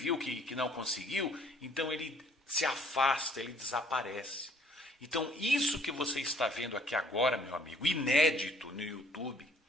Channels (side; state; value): both; normal; correlation 0.60